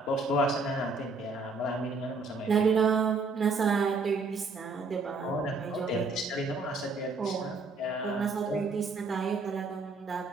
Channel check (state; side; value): quieter; left; 3.8 dB